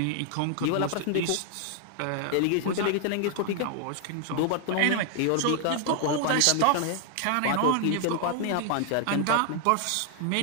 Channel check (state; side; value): different; both; correlation 0.00